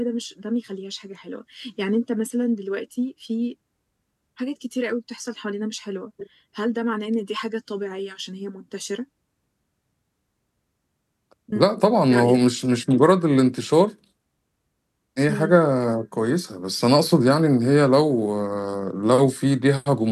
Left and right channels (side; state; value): both; identical; correlation 1.00